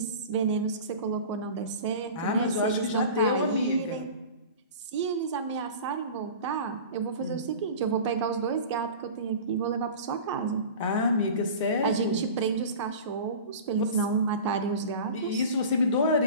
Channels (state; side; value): inverted; both; correlation -0.36